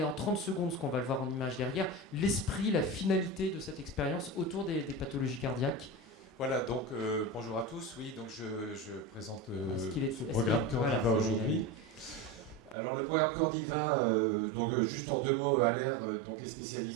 en 30 secondes, ce qu'on va le voir en image derrière, l'esprit, la finalité de cette expérience autour des pathologies cardiaques. Voilà, donc bonjour à tous. Oui, donc je présente ce programme Cordiva aujourd'hui. Alors le programme Cordiva, donc juste en 2 mots, Aller donc est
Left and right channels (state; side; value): drops out; left; at 12.8 s